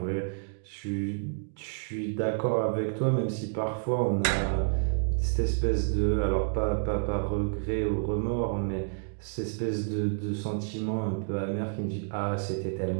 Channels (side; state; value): left; silent; digital silence